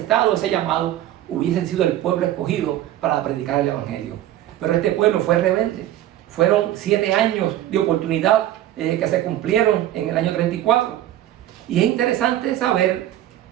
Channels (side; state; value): left; quieter; 13.1 dB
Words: ese llamado, hubiesen sido el pueblo escogido para predicar el Evangelio. Pero este pueblo fue rebelde. Fueron 7 años de oportunidad que se cumplieron en el año 34. Y es interesante saber